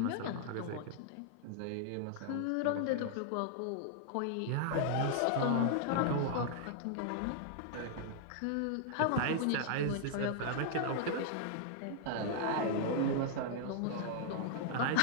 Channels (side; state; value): both; different; correlation -0.01